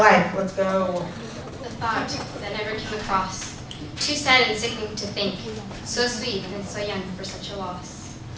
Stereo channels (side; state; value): both; identical; correlation 1.00